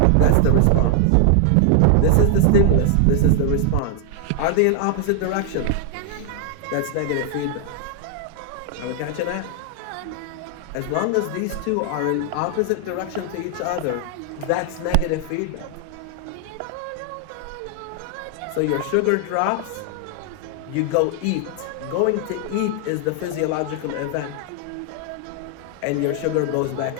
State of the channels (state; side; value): different; both; correlation 0.00